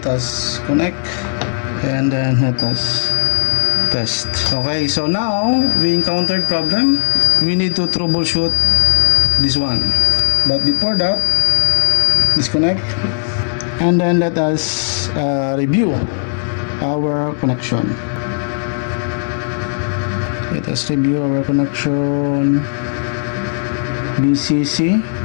us connect and then let us test. Okay, so now we encountered problem. We need to troubleshoot this one, but before that, disconnect and then let us review our connection. Let us review our connection. BCC,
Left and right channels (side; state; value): right; silent; 69 dB below the other